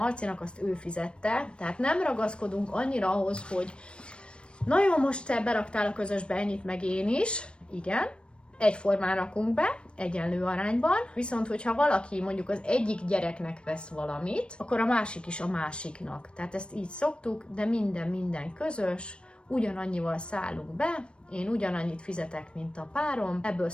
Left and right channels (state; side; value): late; right; 0.057 ms